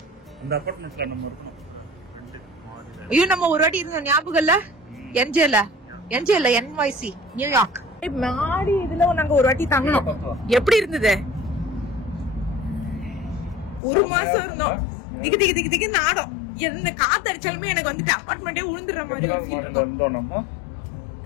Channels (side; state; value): right; drops out; at 13.8 s